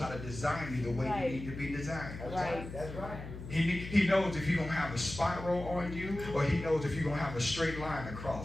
to design you the way Right. you need to be designed. That's right. That's right. He knows if you're going to have a spiral on you, or He knows if you're going to have a straight line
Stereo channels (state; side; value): noise; left; hum, 10 dB below the sound